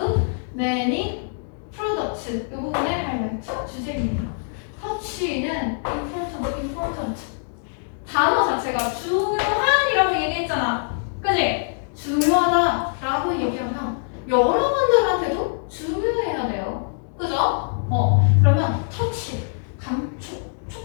many products. 이 부분의 하이라이트 주제입니다. 터치는 important. 단어 자체가 중요한이라고 얘기했잖아. 그지? 중요하다라고 얘기하면 여러분들한테도 중요해야 돼요. 그죠? 그러면 터치, 감촉,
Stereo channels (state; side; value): silent; right; 63 dB below the other